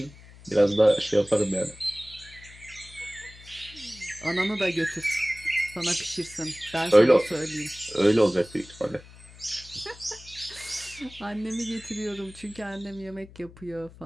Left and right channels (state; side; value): noise; left; hum, 20 dB below the sound